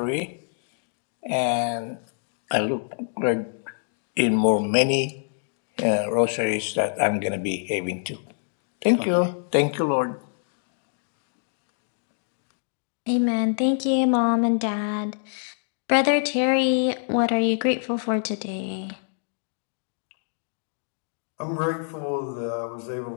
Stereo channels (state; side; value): silent; right; digital silence